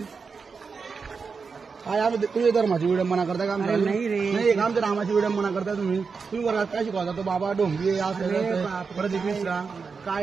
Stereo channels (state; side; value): quieter; left; 5.2 dB